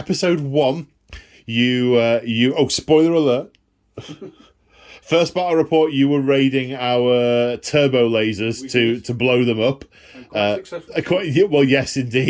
1, oh, spoiler alert. First battle report, you were raiding our turbo lasers to blow them up. Well, yes,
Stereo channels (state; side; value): identical; both; correlation 1.00